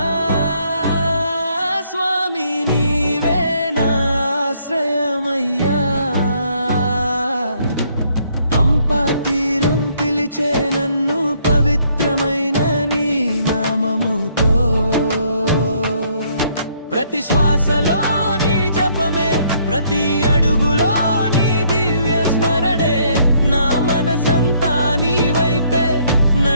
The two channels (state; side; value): inverted; both; correlation -0.67